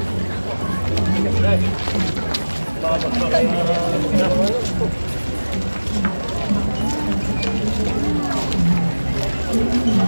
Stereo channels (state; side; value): inverted; both; correlation -1.00